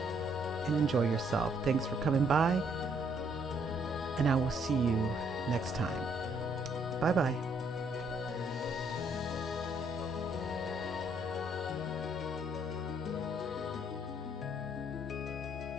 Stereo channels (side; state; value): both; normal; correlation 0.68